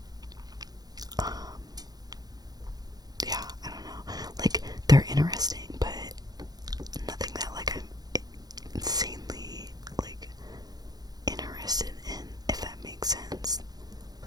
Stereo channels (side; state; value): left; late; 0.19 ms